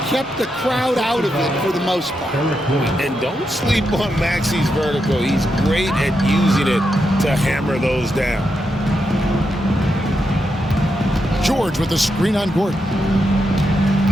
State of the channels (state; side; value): normal; both; correlation 0.84